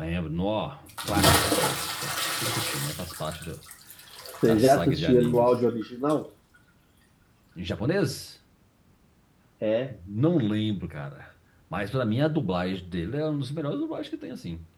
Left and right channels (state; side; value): identical; both; correlation 1.00